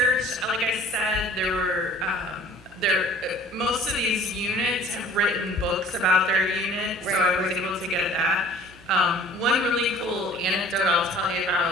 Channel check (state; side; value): normal; both; correlation 0.49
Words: Like I said, there were most of these units have written books about their unit, so I was able to get that. One really cool anecdote I'll tell you